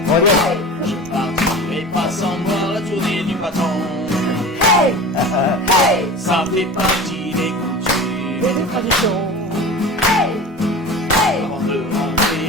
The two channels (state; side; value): normal; both; correlation 0.34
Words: Hey! Je partirai pas sans voir la tournée du patron. Hey! Hey! Ça fait partie des coutumes et des traditions. Hey! Hey! Avant de